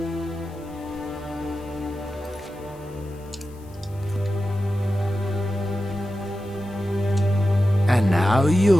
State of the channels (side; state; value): left; noise; hiss, 27 dB below the sound